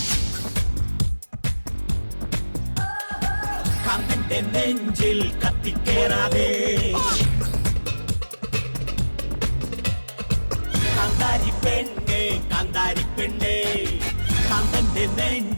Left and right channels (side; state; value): both; inverted; correlation -1.00